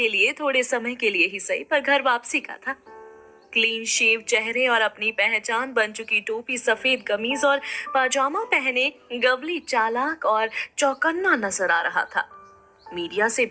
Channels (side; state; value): both; identical; correlation 1.00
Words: लिए थोड़े समय के लिए ही सही पर घर वापसी का था। क्लीन शेव चेहरे और अपनी पहचान बन चुकी टोपी, सफेद कमीज और पाजामा पहने गवली चालाक और चौकन्ना नजर आ रहा था। मीडिया से